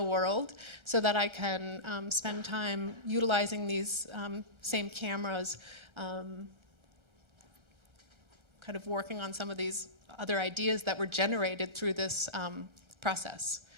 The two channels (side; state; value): left; late; 1.3 ms